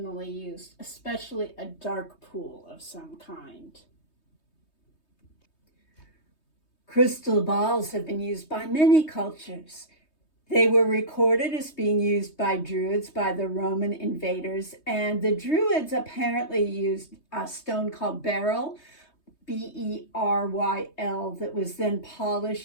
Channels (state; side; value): late; right; 3.2 ms